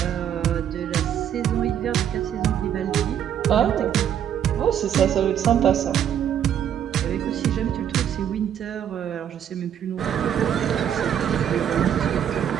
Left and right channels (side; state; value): left; quieter; 9.5 dB